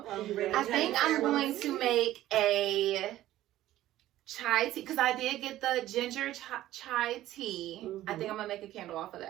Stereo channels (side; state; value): left; quieter; 14.4 dB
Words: Well, you ready to I think I'm share going with to me? make a chai tea because I did get the ginger chai tea. I think I'm gonna make a candle off of